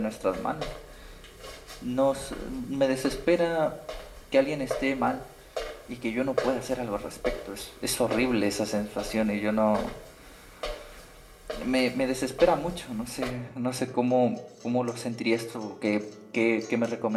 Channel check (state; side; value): identical; both; correlation 1.00